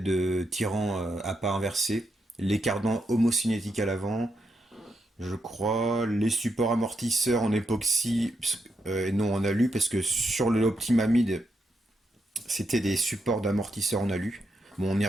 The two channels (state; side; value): normal; both; correlation 0.82